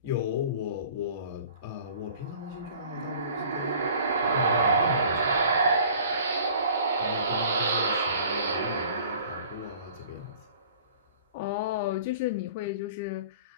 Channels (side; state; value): both; inverted; correlation -0.48